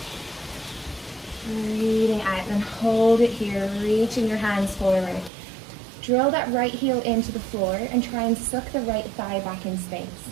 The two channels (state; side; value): drops out; left; at 5.3 s